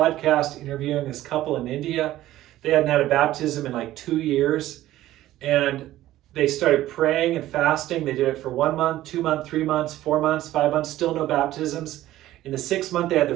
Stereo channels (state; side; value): quieter; left; 14.7 dB